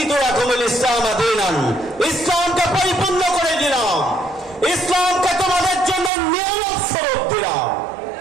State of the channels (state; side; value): drops out; left; at 6.1 s